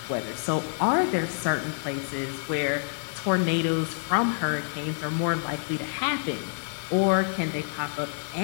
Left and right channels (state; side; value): silent; right; digital silence